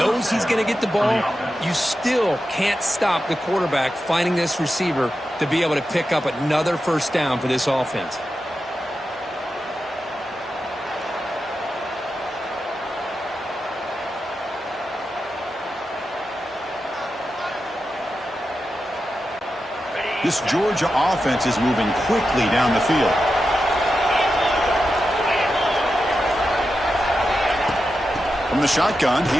he's going to get the ball. You still can't stop the quarterback finding this receiver to be able to pick up another first down for this offense. This Georgia offense is moving quickly down the field. From the shotgun,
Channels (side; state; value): both; normal; correlation 0.90